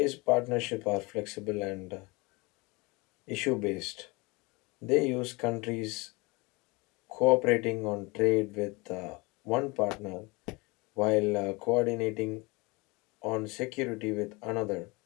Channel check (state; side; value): quieter; right; 25.8 dB